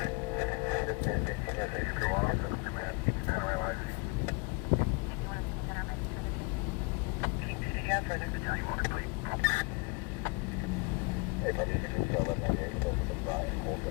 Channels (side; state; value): right; quieter; 29.5 dB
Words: Go on, command, Panorama IC. Keep to the half further. Tell you what, complete. Hey, buddy, you can just tell them that you're supposed to try and hold